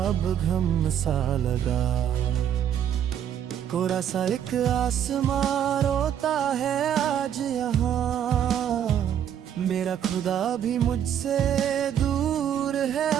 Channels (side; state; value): left; quieter; 9.6 dB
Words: अब गम सा लगा। कोरा सा एक आसमां रोता है आज यहाँ, मेरा खुदा भी मुझसे दूर है